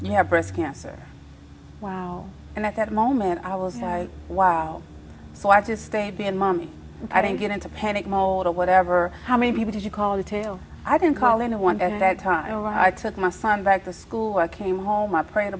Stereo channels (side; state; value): both; identical; correlation 1.00